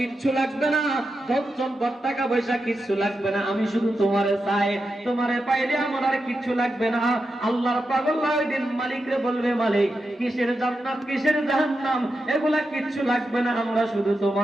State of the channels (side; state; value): both; normal; correlation 0.88